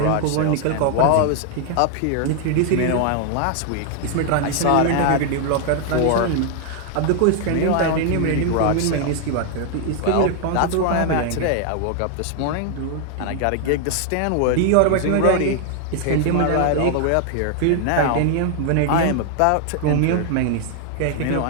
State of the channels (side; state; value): both; different; correlation 0.00